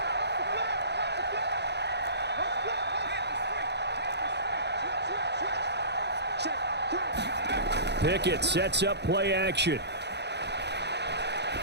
Pickett sets up play action.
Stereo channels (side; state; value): left; late; 0.49 ms